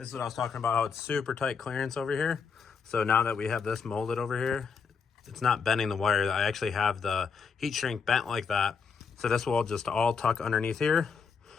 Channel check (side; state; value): right; quieter; 5.8 dB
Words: is what I was talking about, how it's super tight clearance over here. So now that we have this molded over here, it's not bending the wire. I actually have the heat shrink bent like that. So this will just all tuck underneath here.